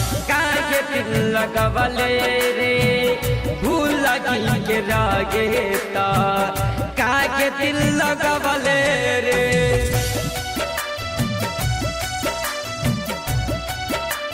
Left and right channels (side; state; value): both; identical; correlation 1.00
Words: काहे दिल लगवले रे। भूल के रहेता काहे दिल लगवले रे।